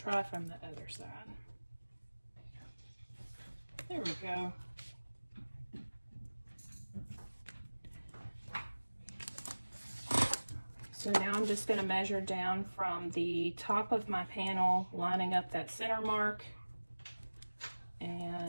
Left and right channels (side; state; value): both; inverted; correlation -1.00